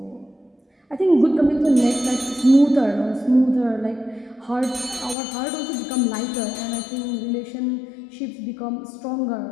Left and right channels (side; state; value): right; drops out; at 5.2 s